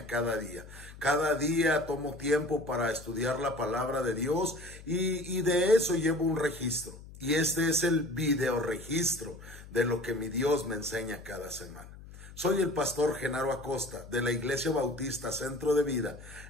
cada día. Cada día tomo tiempo para estudiar la palabra de Dios y de eso llevo un registro. Y este es el video registro de lo que mi Dios me enseña cada semana. Soy el pastor Genaro Acosta de la Iglesia Bautista Centro de Vida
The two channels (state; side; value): noise; left; hum, 17 dB below the sound